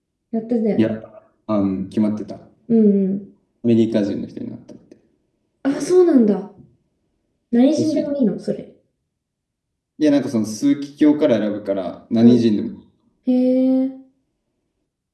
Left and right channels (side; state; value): both; identical; correlation 1.00